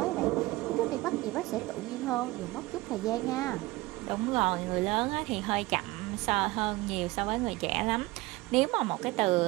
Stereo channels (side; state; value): left; quieter; 20.3 dB